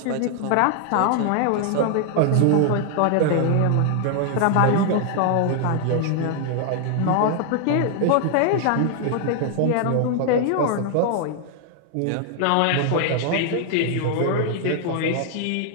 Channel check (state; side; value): different; both; correlation 0.00